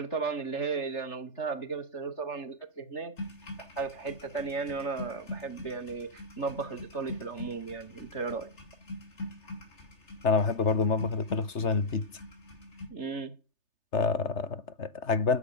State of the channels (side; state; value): right; late; 3.3 ms